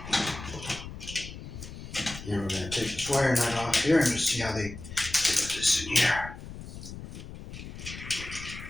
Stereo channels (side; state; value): left; noise; rumble, 11 dB below the sound